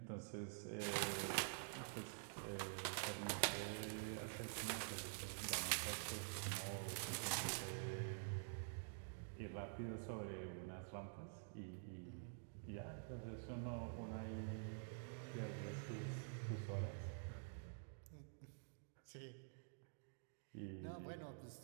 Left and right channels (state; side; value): silent; left; digital silence